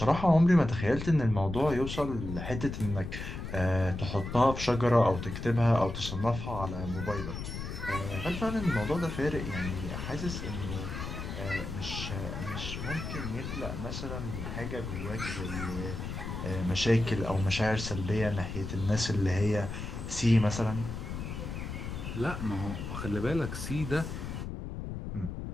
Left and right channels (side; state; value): left; noise; rumble, 6 dB below the sound